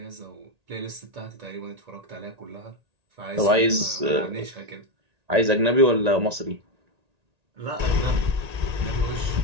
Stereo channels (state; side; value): late; left; 1.8 ms